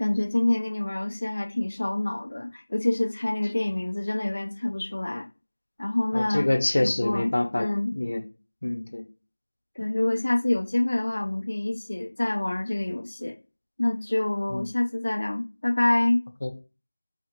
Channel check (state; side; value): inverted; both; correlation -1.00